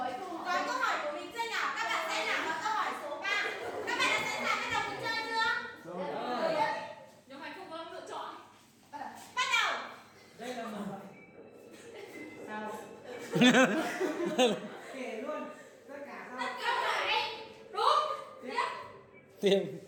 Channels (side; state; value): both; identical; correlation 1.00